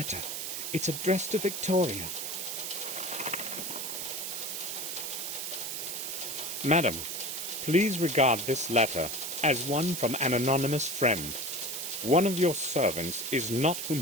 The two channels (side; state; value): right; noise; hiss, 4 dB below the sound